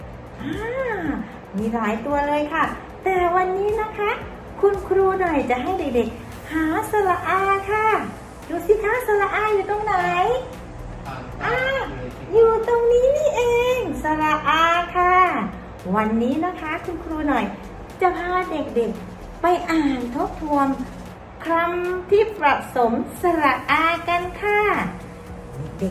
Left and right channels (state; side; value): identical; both; correlation 1.00